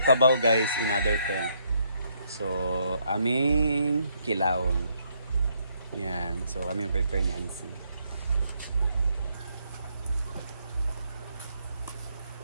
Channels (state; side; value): inverted; both; correlation -0.73